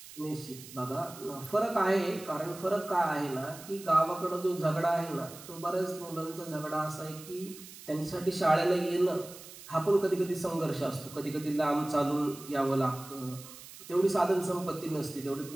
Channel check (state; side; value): noise; right; hiss, 16 dB below the sound